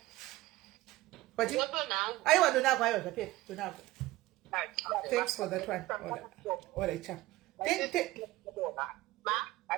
aiwa donako aiwa zvapera donako thanks for that one all right chap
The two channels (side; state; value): left; quieter; 17.7 dB